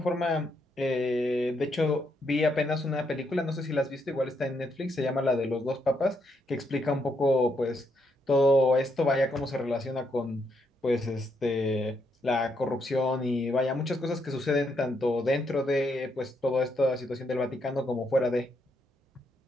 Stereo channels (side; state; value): both; normal; correlation 0.77